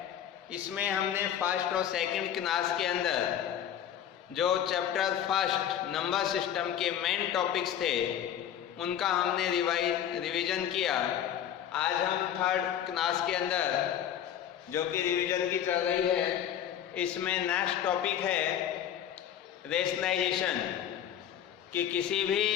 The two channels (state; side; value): quieter; right; 10.0 dB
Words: इसमें हमने फर्स्ट और सेकंड क्लास के अंदर जो चैप्टर फर्स्ट नंबर सिस्टम के मेन टॉपिक्स थे उनका हमने रिवीजन किया। आज हम 3rd क्लास के अंदर जो कि रिवीजन की चल रही है, इसमें नेक्स्ट टॉपिक है रेशनलाइजेशन, कि किसी भी